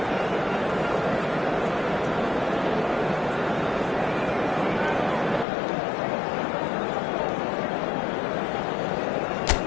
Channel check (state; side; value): drops out; right; at 5.5 s